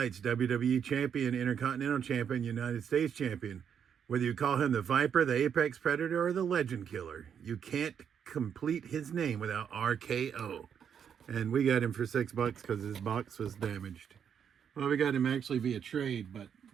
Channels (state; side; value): quieter; left; 7.9 dB